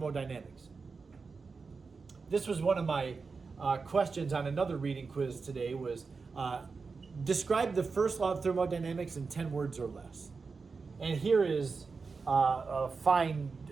This was one of my questions on another reading quiz today, was describe the first law of thermodynamics in 10 words or less. And here is a fine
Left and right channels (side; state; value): left; quieter; 4.7 dB